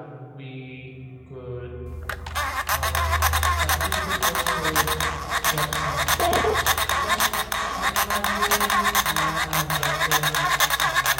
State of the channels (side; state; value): both; identical; correlation 1.00